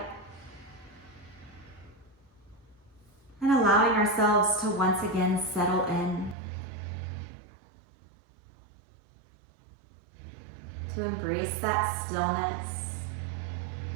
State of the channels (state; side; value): drops out; left; at 6.4 s